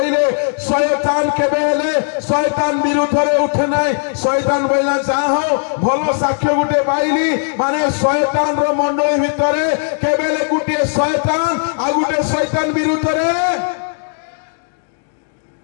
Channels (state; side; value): silent; right; 68 dB below the other